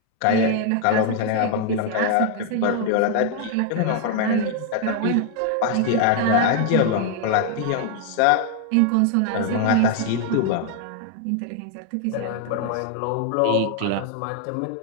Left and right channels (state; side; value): different; both; correlation 0.00